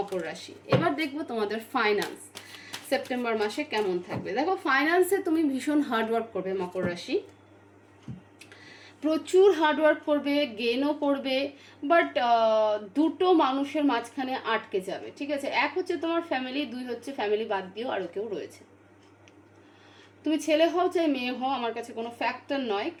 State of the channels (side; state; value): both; identical; correlation 1.00